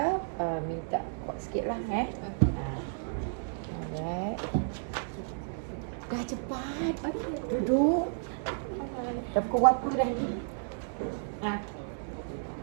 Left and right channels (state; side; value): silent; left; 56 dB below the other